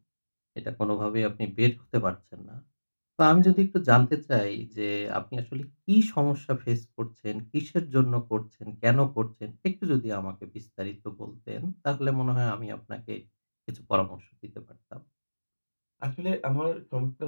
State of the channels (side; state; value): both; inverted; correlation -1.00